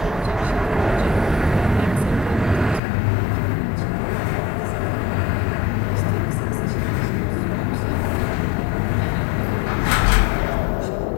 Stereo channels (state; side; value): drops out; right; at 2.8 s